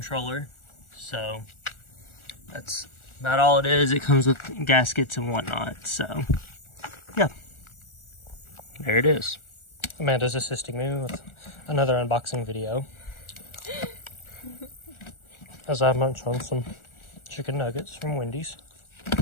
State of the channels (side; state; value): right; late; 1.4 ms